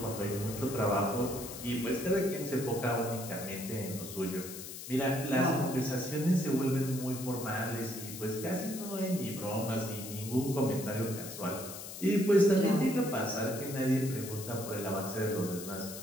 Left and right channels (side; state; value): left; noise; hiss, 10 dB below the sound